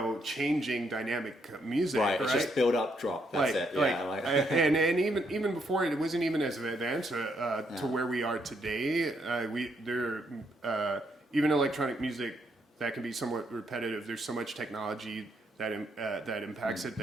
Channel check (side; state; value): both; normal; correlation 0.75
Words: changing dynamic music, right? It's just build up, drop. That's it. And even before it wasn't even as advanced to where we are today. Even electronic music that can be somewhat repetitive. There's so much technology that impacts it,